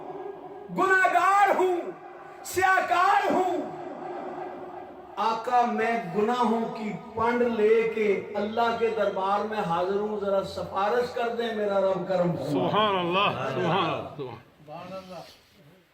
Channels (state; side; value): identical; both; correlation 1.00